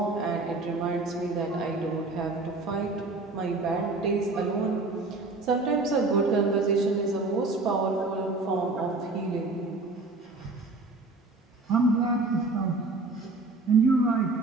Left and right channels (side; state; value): left; quieter; 3.4 dB